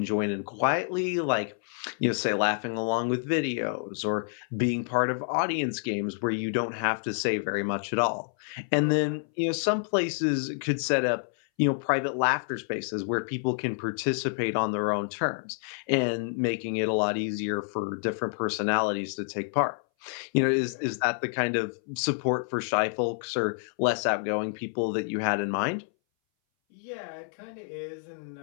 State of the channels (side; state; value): right; silent; 59 dB below the other